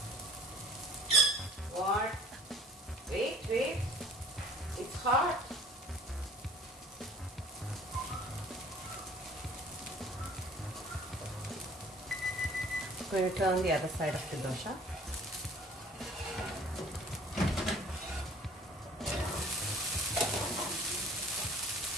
What? Wait. It's hot. I'm going to turn the other side of the dosa.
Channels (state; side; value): normal; both; correlation 0.52